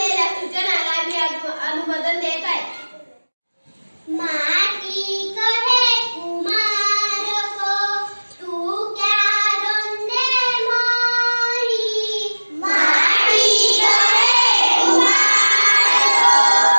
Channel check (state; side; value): inverted; both; correlation -1.00